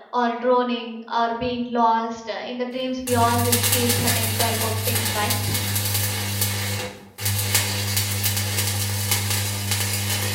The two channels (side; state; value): both; identical; correlation 1.00